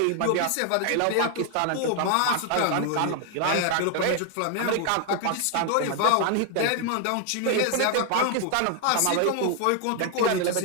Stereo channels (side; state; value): both; different; correlation 0.00